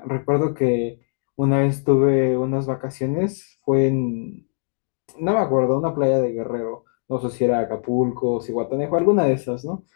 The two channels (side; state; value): right; silent; digital silence